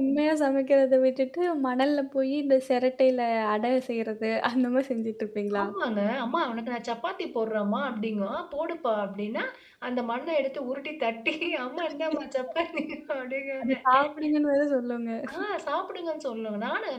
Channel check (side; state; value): both; identical; correlation 1.00